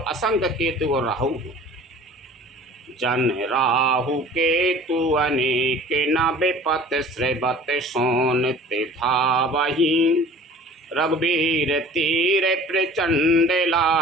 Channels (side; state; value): both; normal; correlation 0.46